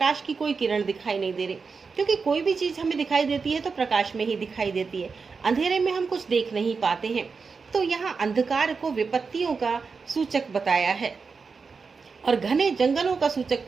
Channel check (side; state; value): left; quieter; 5.0 dB